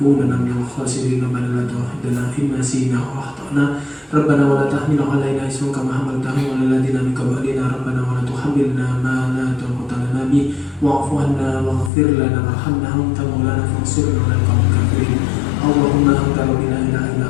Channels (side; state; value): right; drops out; at 11.9 s